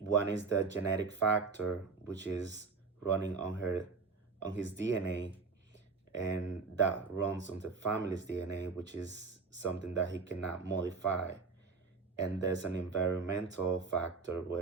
is the genetic factor, which is running on his DNA, and that runs on the family's DNA, which is something that he cannot modify. And there's an environmental factor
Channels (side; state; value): left; quieter; 4.6 dB